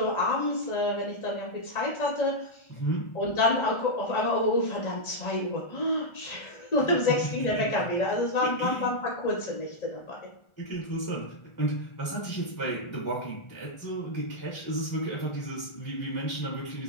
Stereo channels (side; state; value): right; late; 1.4 ms